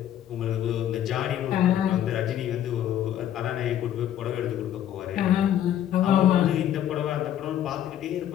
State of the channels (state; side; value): quieter; right; 11.0 dB